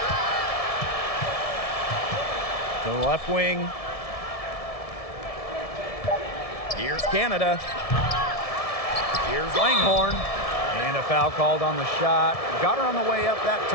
To the left wing. Here's Canada. Here's Langhorne. And a foul called on the shot. Got her on the way up that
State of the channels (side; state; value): right; late; 1.7 ms